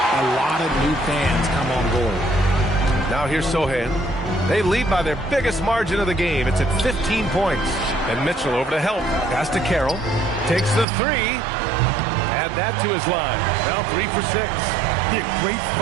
lot of new fans come on board. Now here's Sohan. They lead by their biggest margin of the game. It's at 15 points. And Mitchell over to help. Pass to Carroll. Takes the three. Add that to his line. Now 3 for 6. Yeah, great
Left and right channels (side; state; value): left; drops out; at 10.9 s